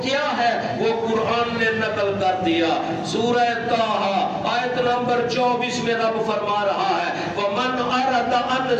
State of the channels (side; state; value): both; identical; correlation 1.00